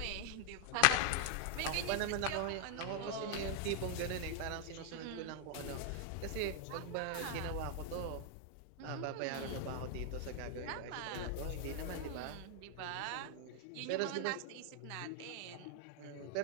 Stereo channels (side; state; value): both; different; correlation 0.00